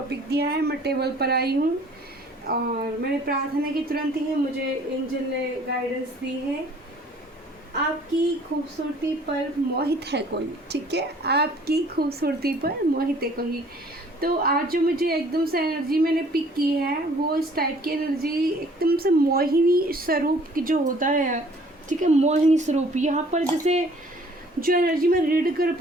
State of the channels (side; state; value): both; normal; correlation 0.55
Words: दिया है। मैं टेबल पर आई हूँ और मैंने प्रार्थना की तुरंत ही मुझे एंजल ने गाइडेंस दी है। आपकी खूबसूरती पर मोहित है कोई, ठीक है। आपकी खूबसूरती पर मोहित है कोई। तो आज जो मुझे एकदम से एनर्जी मैंने पिक की है वो इस टाइप की एनर्जी एकदम से मोहिनी स्वरूप की जो होता है, ठीक है। मोहिनी स्वरूप यहाँ पर जैसे जो एनर्जी मैं रीड कर